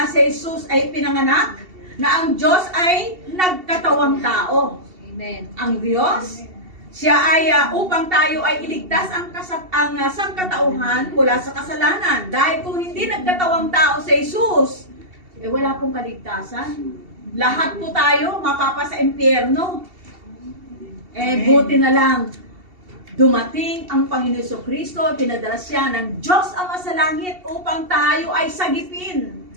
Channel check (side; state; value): left; late; 2.7 ms